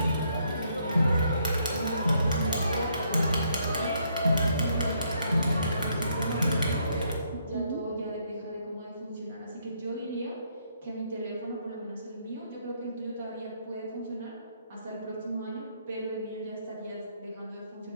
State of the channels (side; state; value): both; inverted; correlation -0.71